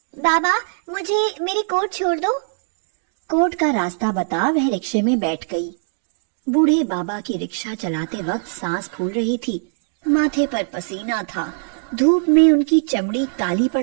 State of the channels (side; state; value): left; silent; digital silence